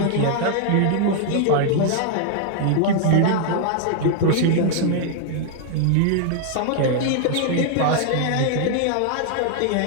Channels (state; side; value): different; both; correlation 0.00